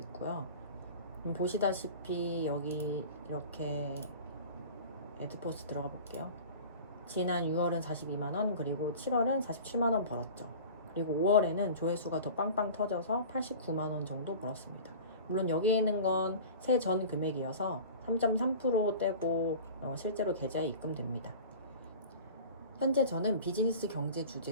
보시다시피 여기 이렇게 애드포스트 들어가 볼게요. 지난 6월은 42만 원, 그리고 7월은 47만 원 벌었죠. 그리고 5월에는 조회수가 더 빵빵 터져서 89만 원 정도 벌었습니다. 물론 여기에 있는 건 세전 금액이어서 3.3% 떼고 실제로 계좌에 입금됩니다. 현재 저는 비즈니스 경제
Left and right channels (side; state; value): both; inverted; correlation -0.38